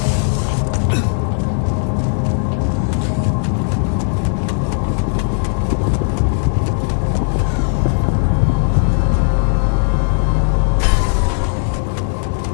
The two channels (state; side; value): silent; right; 65 dB below the other